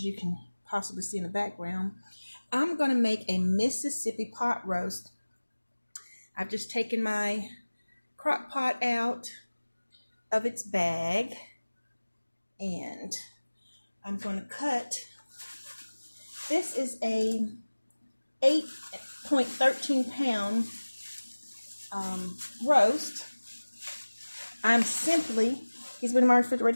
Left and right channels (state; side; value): inverted; both; correlation -1.00